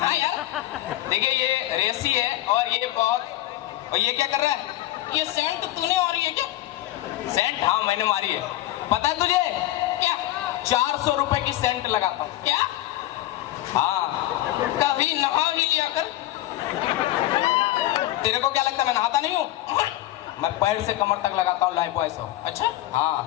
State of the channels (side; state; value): right; quieter; 15.3 dB